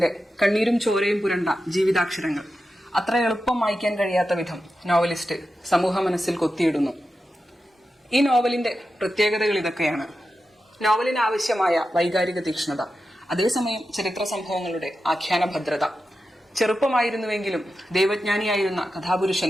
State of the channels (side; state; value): both; normal; correlation 0.91